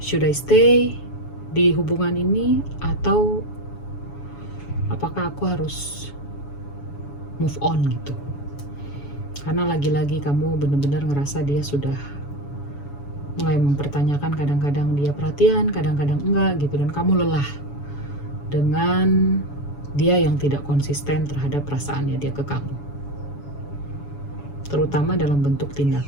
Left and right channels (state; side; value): late; right; 7.1 ms